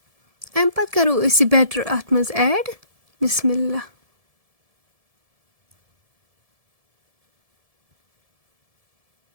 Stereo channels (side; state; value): left; late; 1.7 ms